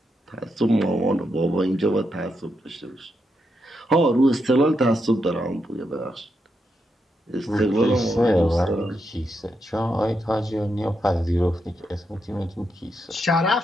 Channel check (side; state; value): both; normal; correlation 0.83